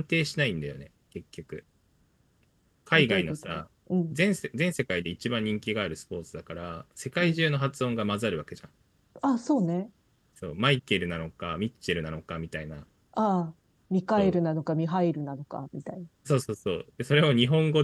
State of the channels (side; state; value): both; identical; correlation 1.00